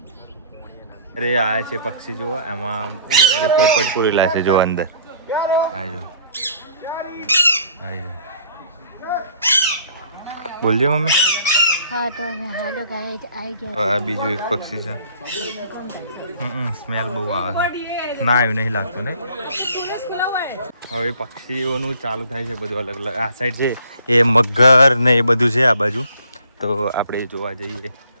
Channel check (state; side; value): inverted; both; correlation -0.55